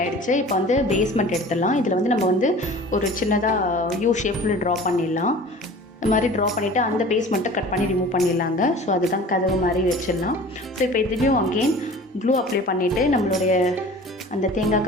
இப்போ வந்து பேஸ்மெண்ட் எடுத்துடலாம். இதில் வந்து நம்ம வந்து ஒரு சின்னதாக யூ ஷேப்பில் ட்ரா பண்ணிடலாம். இந்த மாதிரி ட்ரா பண்ணிவிட்டு அந்த பேஸ்மெண்ட்டை கட் பண்ணி ரிமூவ் பண்ணிடலாங்க. ஸோ அதுதான் கதவு மாதிரி வச்சிடலாம். ஸோ இப்போ இதுலேயும் அகெயின் க்ளூ அப்ளை பண்ணிவிட்டு நம்மளுடைய அந்த தேங்காய்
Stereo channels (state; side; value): normal; both; correlation 0.43